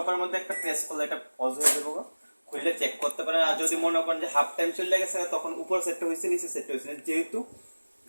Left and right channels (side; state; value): both; inverted; correlation -1.00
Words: মধ্যে একটা প্রেস করলে এটা পজ হয়ে যাবে, খুললে চেক করতে পারেন। আর যদি মনে করেন যে হাফ টাইম চলে গেছে তখন উপর সেটটা হয়েছে নিচে সেটটা হয়েছে, যেহেতু